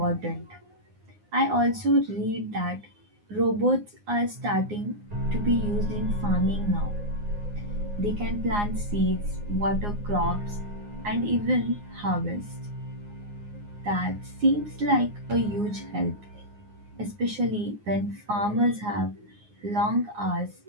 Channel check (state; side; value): late; left; 9.7 ms